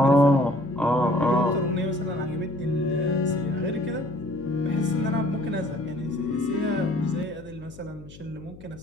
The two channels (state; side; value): noise; left; hum, 19 dB below the sound